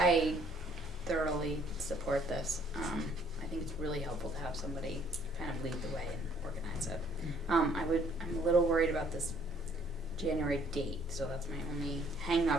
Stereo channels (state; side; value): normal; both; correlation 0.62